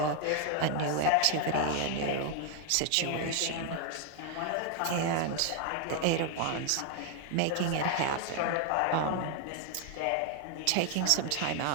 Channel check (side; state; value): both; different; correlation 0.00